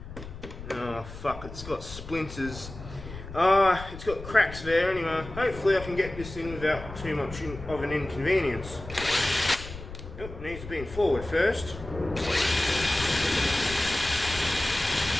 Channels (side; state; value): left; noise; rumble, 12 dB below the sound